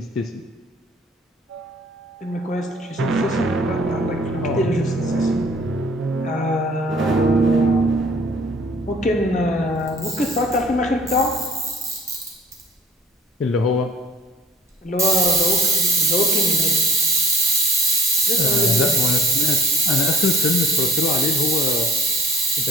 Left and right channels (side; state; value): both; normal; correlation 0.51